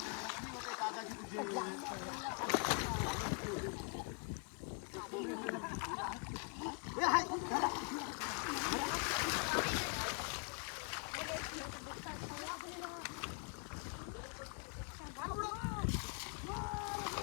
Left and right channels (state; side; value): quieter; right; 37.6 dB